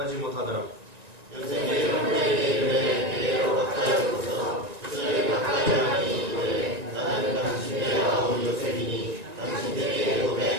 못하더라. 요셉이 형들에게 이르되 내게로 가까이 오소서. 그들이 가까이 하니 이르되 나는 당신의 아우 요셉이니 당신에게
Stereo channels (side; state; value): left; late; 1.9 ms